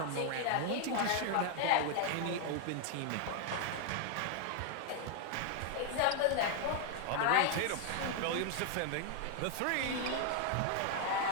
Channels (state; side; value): different; both; correlation 0.00